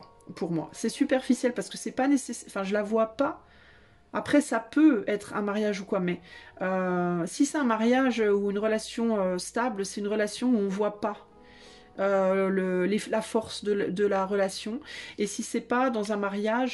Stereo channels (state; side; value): identical; both; correlation 1.00